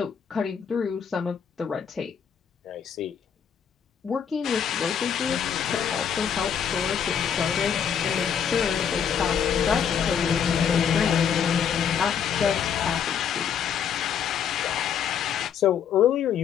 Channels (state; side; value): quieter; right; 7.9 dB